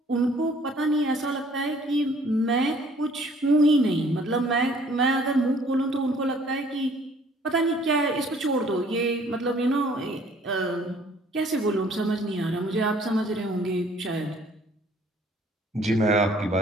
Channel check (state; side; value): normal; both; correlation 0.58